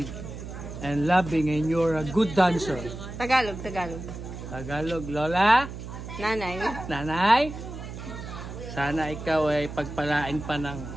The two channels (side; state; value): right; noise; hum, 10 dB below the sound